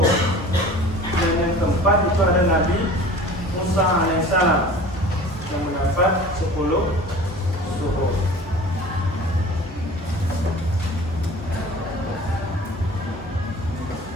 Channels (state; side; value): normal; both; correlation 0.42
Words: Dan yang keempat itu ada Nabi Musa alaihissalam yang mendapat 10 suhuf.